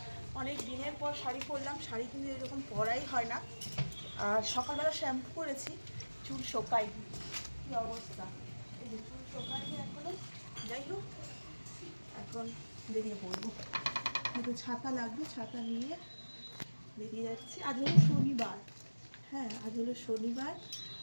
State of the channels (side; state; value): both; inverted; correlation -1.00